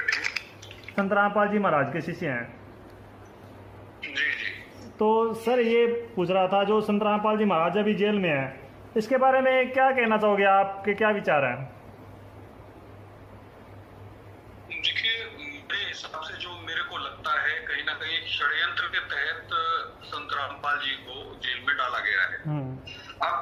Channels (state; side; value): identical; both; correlation 1.00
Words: संत रामपाल जी महाराज के शिष्य हैं। जी जी। तो सर ये पूछ रहा था, जो संत रामपाल जी महाराज अभी जेल में हैं, इसके बारे में क्या कहना चाहोगे? आपके क्या विचार हैं? देखिए, मेरे हिसाब से जो मेरे को लगता है, कहीं ना कहीं षड्यंत्र के तहत संत रामपाल जी को जेल में डाला गया है। अब